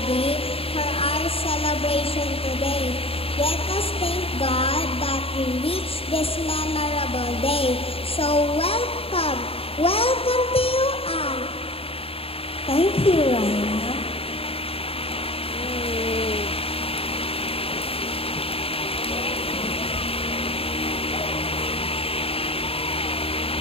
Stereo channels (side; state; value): right; late; 0.27 ms